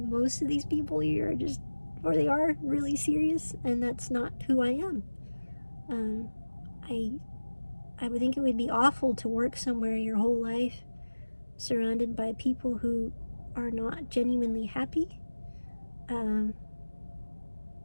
of these people here are just, or they are really serious, and that's not who I am. I would think it would be awful to work somewhere your whole life surrounded by people who are not genuinely happy.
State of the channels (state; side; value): inverted; both; correlation -1.00